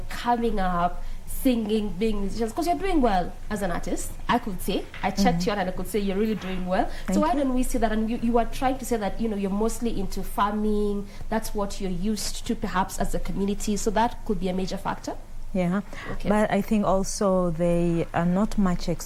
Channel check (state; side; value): identical; both; correlation 1.00